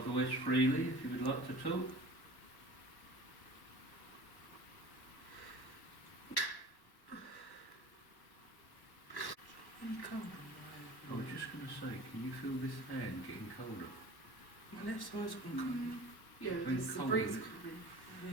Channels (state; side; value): late; right; 1.1 ms